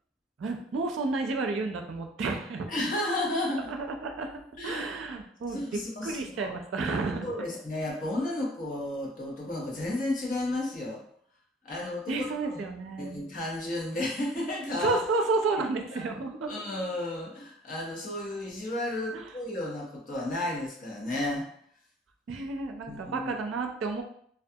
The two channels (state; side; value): normal; both; correlation 0.49